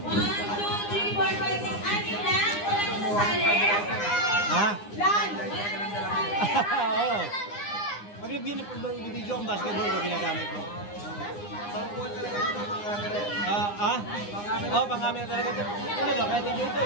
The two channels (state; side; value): late; right; 9.8 ms